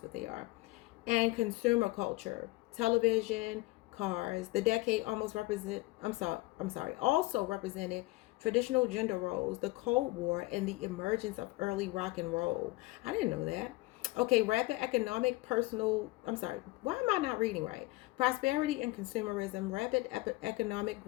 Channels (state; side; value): quieter; right; 21.3 dB